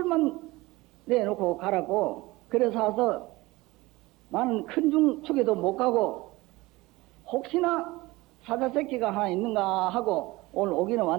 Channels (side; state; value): left; quieter; 20.6 dB